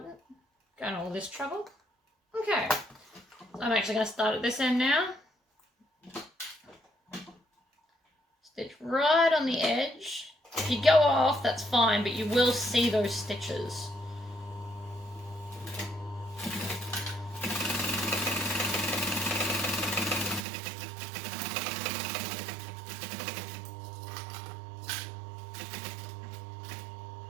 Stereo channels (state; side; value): drops out; left; at 20.4 s